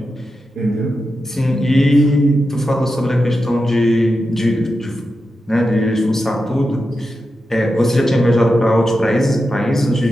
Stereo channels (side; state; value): both; normal; correlation 0.89